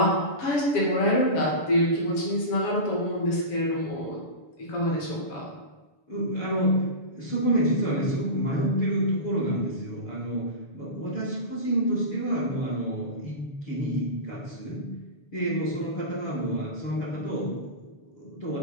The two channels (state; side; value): late; right; 7.0 ms